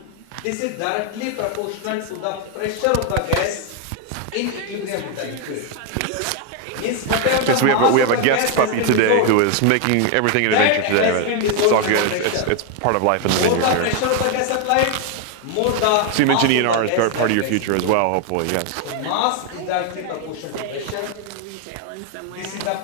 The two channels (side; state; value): both; different; correlation 0.01